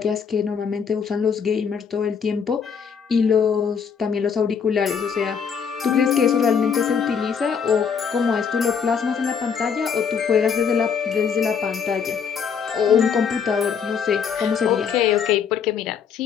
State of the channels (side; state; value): right; quieter; 6.8 dB